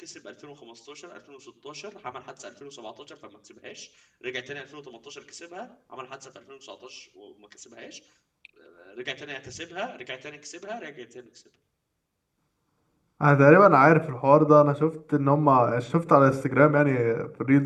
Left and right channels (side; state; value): both; identical; correlation 1.00